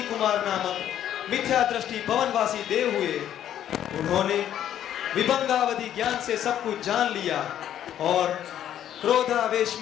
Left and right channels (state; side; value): quieter; right; 10.8 dB